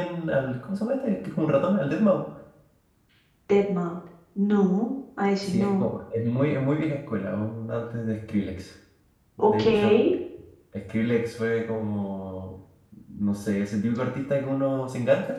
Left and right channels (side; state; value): both; identical; correlation 1.00